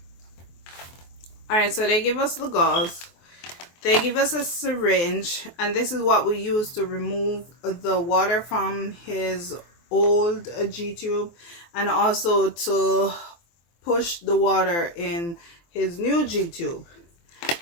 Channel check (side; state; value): right; late; 23 ms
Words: Alright, so they give us the gauze. They give us a syringe, and this is what we use to remove the water from his old G-tube, and also to push the water in his new G-tube.